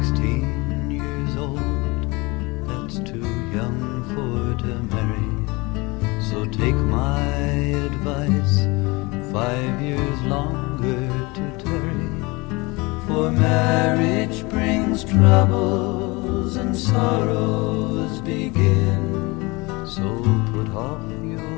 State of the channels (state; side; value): quieter; right; 25.0 dB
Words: years old. That's too young for to marry. So take my advice, 5 years longer to tarry. For marriage brings troubles and sorrows begin. So put off